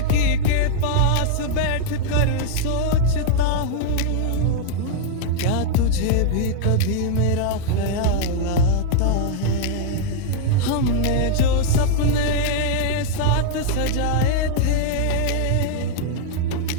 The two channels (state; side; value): different; both; correlation -0.01